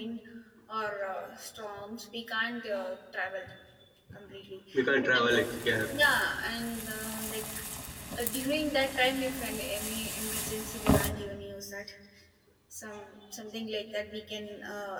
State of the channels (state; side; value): identical; both; correlation 1.00